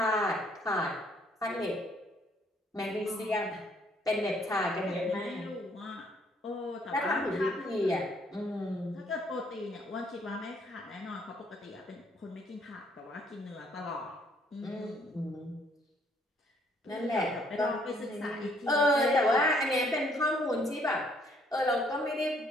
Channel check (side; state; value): both; normal; correlation 0.65